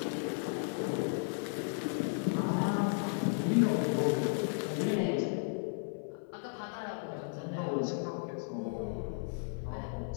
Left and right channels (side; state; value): right; silent; 55 dB below the other